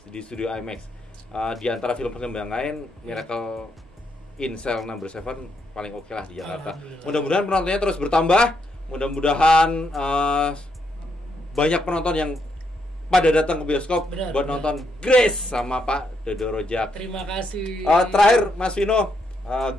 di studio IMAX. Di antara film pengembangan Miracle in Cell Number 7 paling oke lah di Jakarta. Mudah-mudahan penontonnya terus bertambah. Mudah-mudahan banyak penonton yang pada datang ke bioskop buat nonton Grace sama Pak Dodo Rozak. Terima kasih. Terakhir Mas Vino,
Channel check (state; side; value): normal; both; correlation 0.78